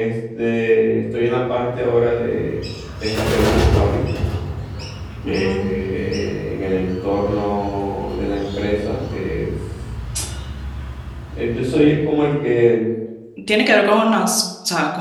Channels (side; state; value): both; identical; correlation 1.00